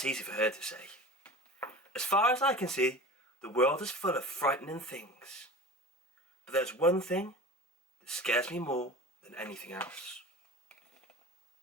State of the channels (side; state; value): both; normal; correlation 0.35